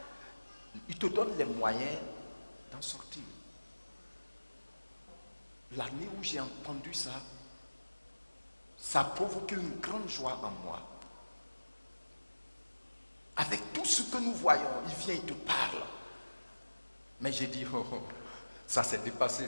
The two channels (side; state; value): both; inverted; correlation -1.00